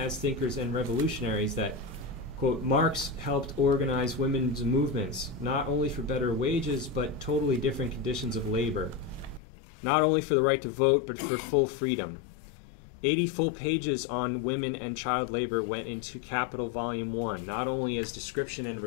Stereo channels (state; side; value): drops out; right; at 9.4 s